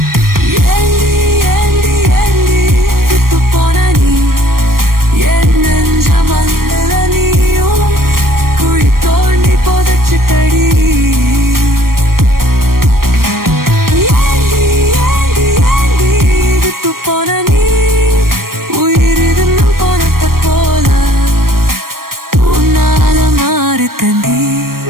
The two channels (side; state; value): left; late; 0.93 ms